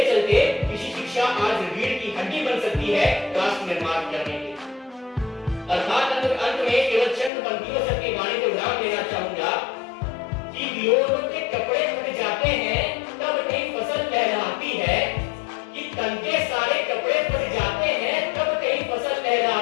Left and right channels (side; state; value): right; drops out; at 7.3 s